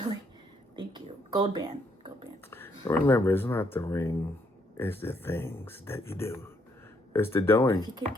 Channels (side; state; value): both; normal; correlation 0.72